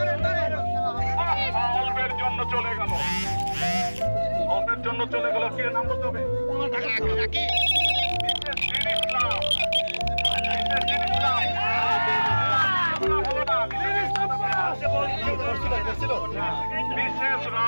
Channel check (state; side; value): inverted; both; correlation -1.00